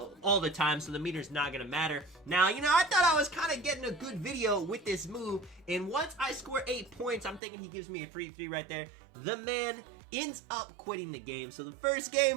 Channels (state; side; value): drops out; left; at 7.4 s